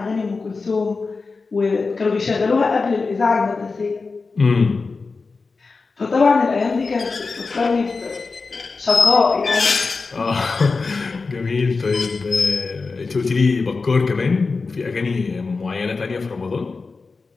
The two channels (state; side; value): quieter; right; 4.2 dB